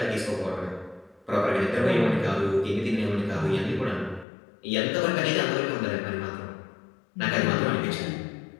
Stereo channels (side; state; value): right; drops out; at 4.2 s